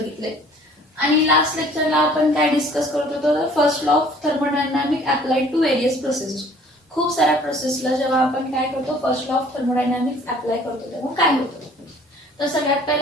आणि लास्ट लेक्चरला आपण काय डिस्कस करत होतो, तर first law of thermodynamic applied to various processes. खूप साऱ्या प्रोसेसला जेव्हा आपण काय करतो, first law of thermodynamics apply करतो तेव्हा काय होतं. तर सगळ्यात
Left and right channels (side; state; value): both; normal; correlation 0.54